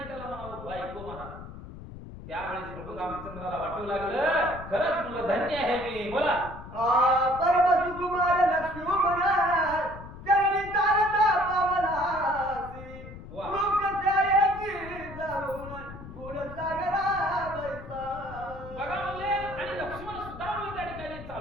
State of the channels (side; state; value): left; noise; rumble, 13 dB below the sound